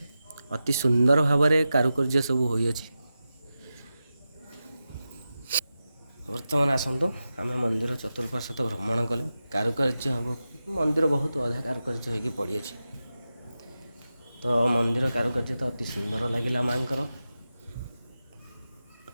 ଅତି ସୁନ୍ଦର ଭାବରେ କାରୁକାର୍ଯ୍ୟ ସବୁ ହୋଇଅଛି। ବର୍ତ୍ତମାନ ଆସନ୍ତୁ ଆମେ ମନ୍ଦିର ଚତୁଃପାର୍ଶ୍ୱ ଭ୍ରମଣ କଲେ। କାରୁକାର୍ଯ୍ୟ ହେବ, ମନ୍ଦିର ବହୁତ ଅଧା କାରୁକାର୍ଯ୍ୟ ହୋଇକି ପଡ଼ିଅଛି। ତ ମନ୍ଦିର କାରୁକାର୍ଯ୍ୟ ତ ଅତି ସୁନ୍ଦର ଲାଗିଲା ମାଆଙ୍କର।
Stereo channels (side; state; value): both; inverted; correlation -0.92